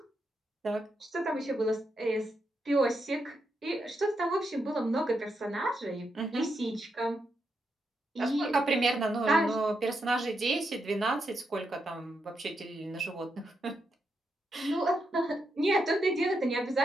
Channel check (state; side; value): normal; both; correlation 0.82